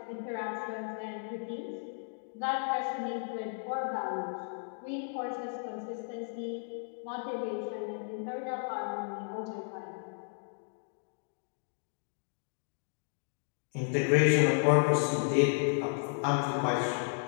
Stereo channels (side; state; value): right; silent; 55 dB below the other